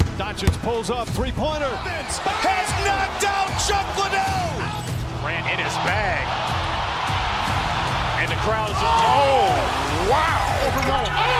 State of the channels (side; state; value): both; identical; correlation 1.00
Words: Doncic pulls up, three-pointer. Has knocked out Chuck Liddell. Ran in his bag. And the crowd is... Oh, wow.